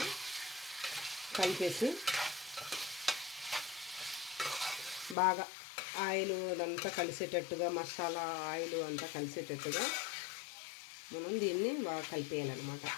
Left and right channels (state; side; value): drops out; right; at 5.2 s